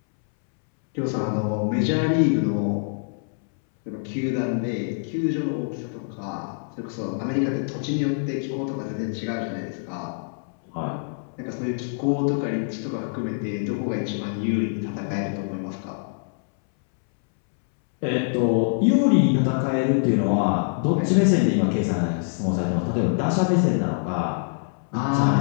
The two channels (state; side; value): silent; right; 62 dB below the other